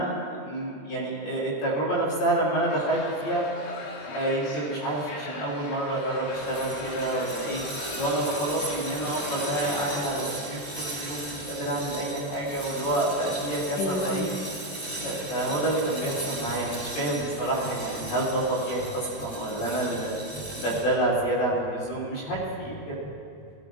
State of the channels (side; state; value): right; late; 21 ms